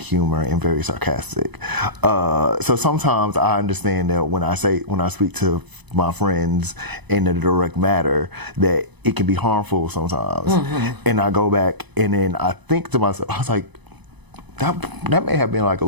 and very sarcastic. So sometimes I understand that when I speak to my friends in a direct matter, that it can be harmful sometimes. And I go back and then I think to myself, I was like, that may have been like a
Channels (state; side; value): late; left; 1.0 ms